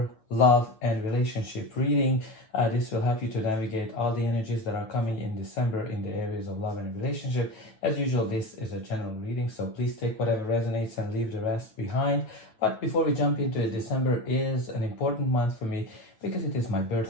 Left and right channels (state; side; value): late; right; 9.2 ms